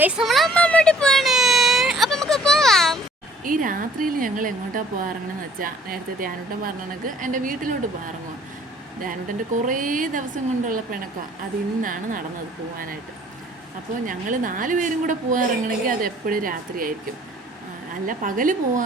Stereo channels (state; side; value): normal; both; correlation 0.55